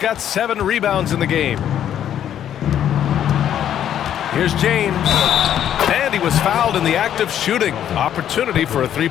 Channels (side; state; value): right; quieter; 10.2 dB